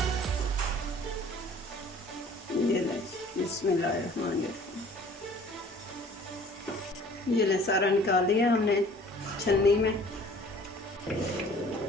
ये ले, बिस्मिल्लाहिर्रहमानिर्रहीम। ये ले, सारा निकाल लिया हमने छन्नी में।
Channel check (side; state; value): both; normal; correlation 0.51